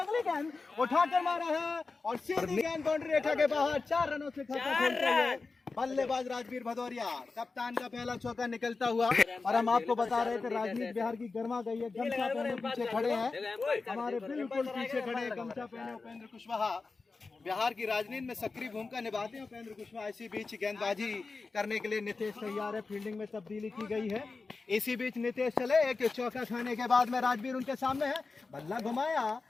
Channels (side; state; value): right; quieter; 4.1 dB